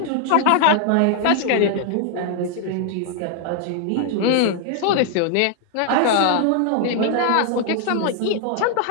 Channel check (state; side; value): different; both; correlation 0.00